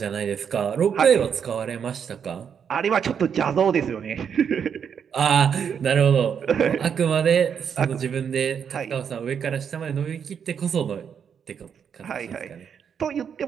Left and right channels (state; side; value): quieter; left; 7.5 dB